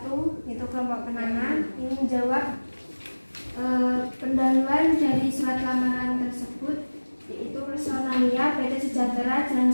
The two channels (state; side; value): inverted; both; correlation -1.00